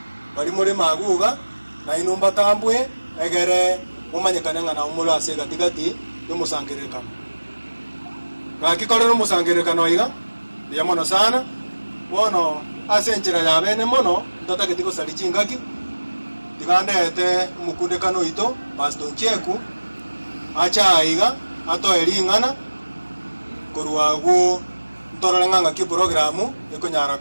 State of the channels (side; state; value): both; inverted; correlation -1.00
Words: bali murema aguga na inumba tambwe egere umanyekana ngana umula ase gatigati y'umusangirekano gakikorera umusangirekano iga yamono sana wono ase njira ya bene mono ntatageti ko salicingaki tigandete umukundekano ito pastor Ncheku acha iga ato elingana kuruagu ntorore nganga ki programu ikonyara